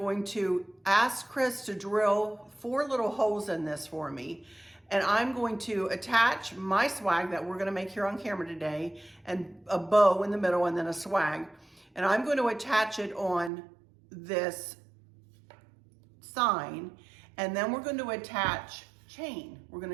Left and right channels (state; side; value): drops out; left; at 13.5 s